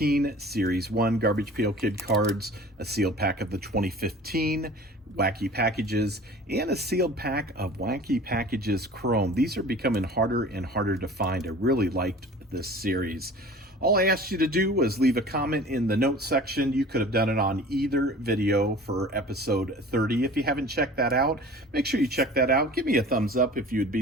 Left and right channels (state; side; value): normal; both; correlation 0.43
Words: Series 1 Garbage Pail Kid cards, a sealed pack of the 2015 Wacky Packages, and a sealed pack of Wacky Packages Chrome. These are becoming harder and harder to find. I really liked this series. All I asked you to do was leave a comment in the notes section. You could have done it on either video for episode 30. If you haven't checked that out, make sure you check that out. Give me a thumbs up if you would be